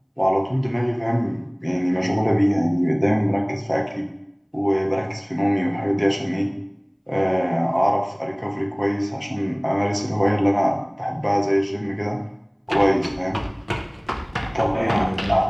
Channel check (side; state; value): both; identical; correlation 1.00